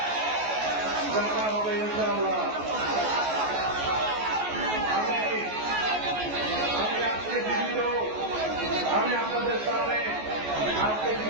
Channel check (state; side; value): late; left; 14 ms